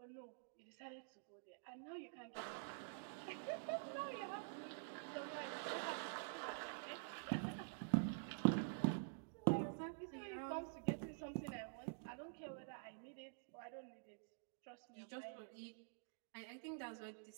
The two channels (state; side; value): silent; left; digital silence